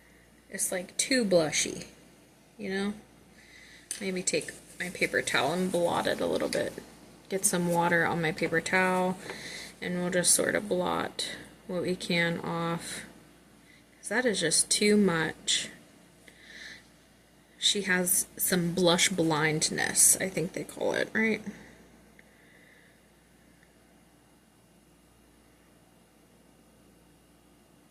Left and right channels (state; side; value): identical; both; correlation 1.00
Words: it's like too blushy, you know? Maybe take my paper towel and blot it a little bit. Get some water on my paper towel And we'll just sort of blot what we can off, because that is just too much. She has some blush blindness, I think they call it, right?